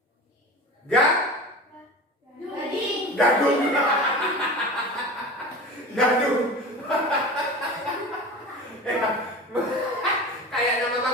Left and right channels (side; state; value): both; normal; correlation 0.33